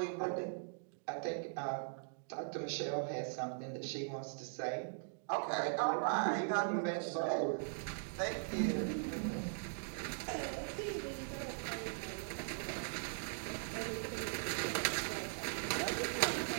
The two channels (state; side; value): silent; left; digital silence